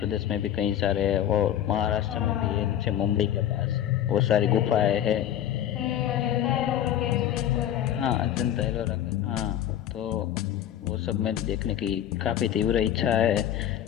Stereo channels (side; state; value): right; quieter; 11.0 dB